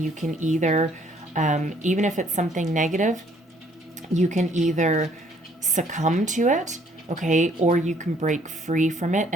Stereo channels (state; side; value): normal; both; correlation 0.63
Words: you can either even if it's something negative, you can either succumb to it, okay, or you can break free from it